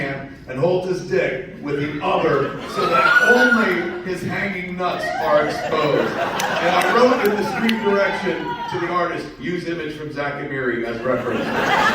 and holds his dick with the other so that only his hanging nuts are exposed. And I wrote in the street direction to the artist, use image from Zach Amiri as reference.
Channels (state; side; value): identical; both; correlation 1.00